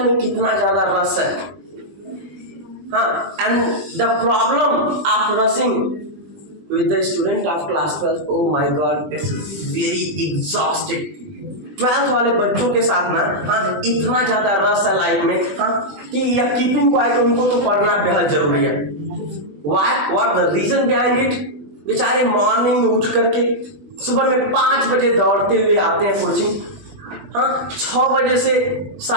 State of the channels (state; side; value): late; left; 20 ms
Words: में कितना ज्यादा रस है. हाँ, and the problem of रसिंग with the student of class 12, oh my god, it's very exhausting. 12th वाले बच्चों के साथ ना, हाँ, इतना ज़्यादा रस है लाइफ में, हाँ, कि यह कीपिंग क्वाइट उनको तो पढ़ना बेहद जरूरी है. Why? What the reason behind it? बेचारे मॉर्निंग में उठ करके सुबह में 5 बजे दौड़ते हुए आते हैं कोचिंग, हाँ, 6 बजे से